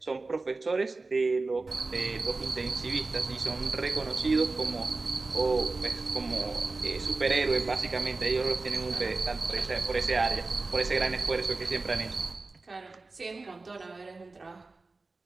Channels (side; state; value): left; quieter; 3.6 dB